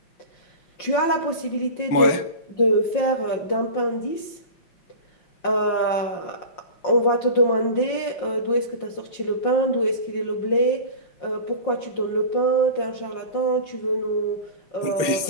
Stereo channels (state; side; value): late; right; 5.6 ms